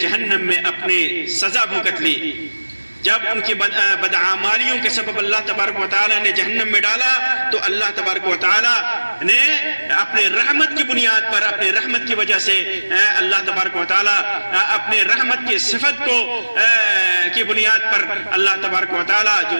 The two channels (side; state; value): both; inverted; correlation -1.00